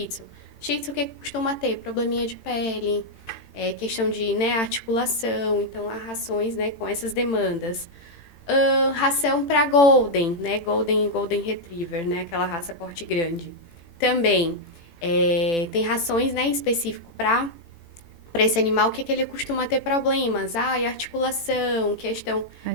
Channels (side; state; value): right; late; 18 ms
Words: Tzu. Shih Tzu, o que costuma ter? Probleminha de pele, questão de, né, articulação. Então, há rações, né, com essas demandas. Ração para Golden, né? Golden e Golden Retriever, né? Aquela raça porte grande. Também tem rações, né, em específico para esse animal, o que ele costuma ter problemas? Articulação, questão...